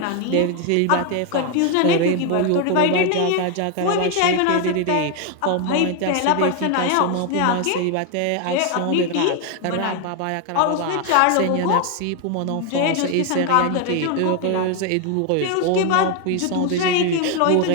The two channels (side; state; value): both; different; correlation 0.01